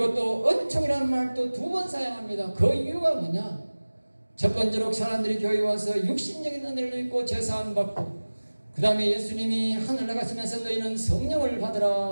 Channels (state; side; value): inverted; both; correlation -1.00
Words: 또 은총이라는 말도 2번 사용합니다. 그 이유가 뭐냐? 첫 번째로 사람들이 교회에 와서 육신적인 은혜를 입고 제사함 받고 그 다음에 예수님이 하늘 나가시면서 너희는 성령을